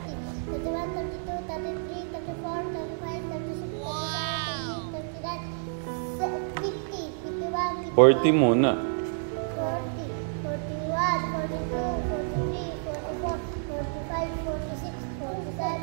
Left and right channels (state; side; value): silent; left; 59 dB below the other